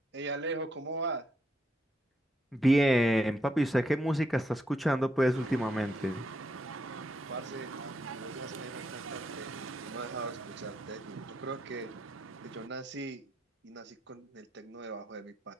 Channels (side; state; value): both; normal; correlation 0.78